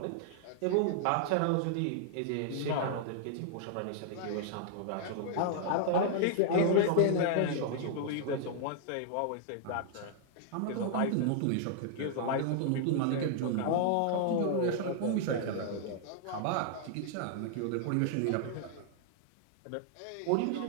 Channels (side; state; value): both; different; correlation -0.01